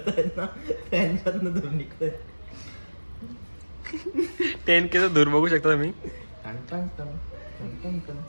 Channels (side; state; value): both; inverted; correlation -1.00